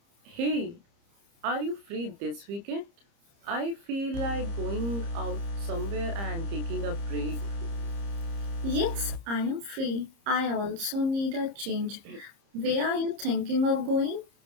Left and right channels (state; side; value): late; left; 30 ms